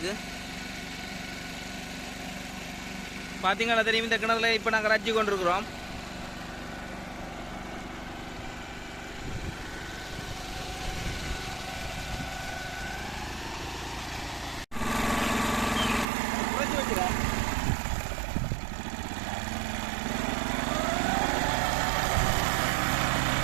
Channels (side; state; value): left; drops out; at 16.1 s